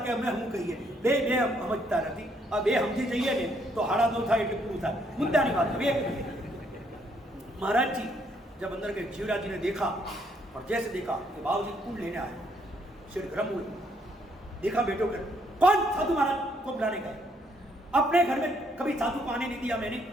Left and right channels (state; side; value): normal; both; correlation 0.70